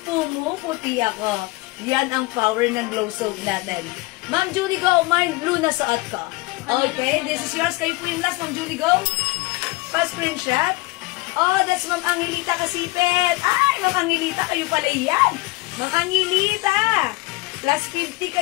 pumuputi ako. Yan ang power ng glow soap natin. Ma'am Julie Go, mind blue na suot ko. Okay, this is yours. Kayo po yung last, Ma'am Julie Go. Pa-screenshot. Oh, that's Ma'am Angelita Kasipet. Ay, Ma'am Angelita, kayo pala yan. Ma'am Angelita. Plus 50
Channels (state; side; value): quieter; right; 22.7 dB